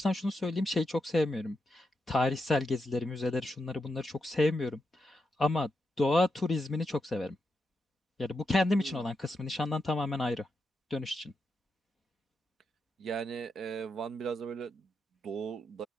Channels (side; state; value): both; normal; correlation 0.85